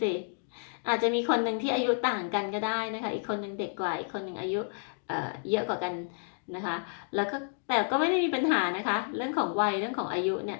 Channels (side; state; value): right; silent; digital silence